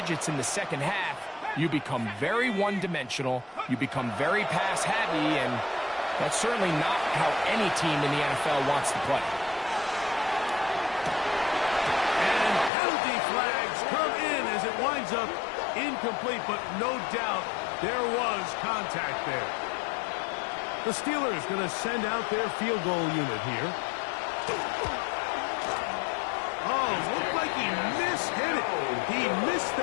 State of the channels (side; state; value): right; drops out; at 12.7 s